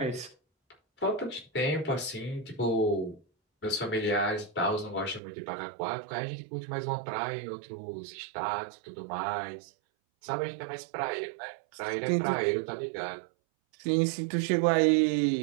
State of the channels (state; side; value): drops out; left; at 5.2 s